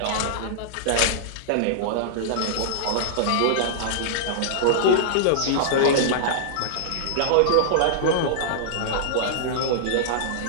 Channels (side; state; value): both; different; correlation -0.01